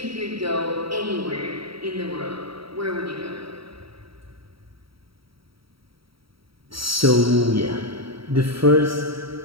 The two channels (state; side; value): late; left; 0.75 ms